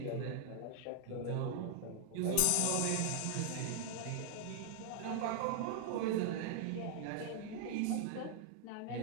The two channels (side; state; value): both; different; correlation -0.01